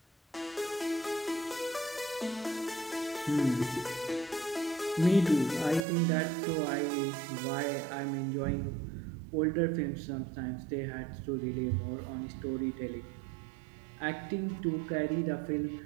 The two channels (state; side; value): drops out; left; at 5.8 s